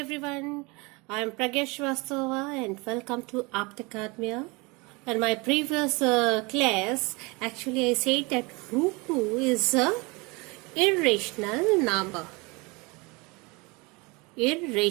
I am Pragesh Vastava and welcome to Aptacademia. In my previous class, actually I said that root 2 is a irrational number.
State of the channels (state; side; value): quieter; left; 26.8 dB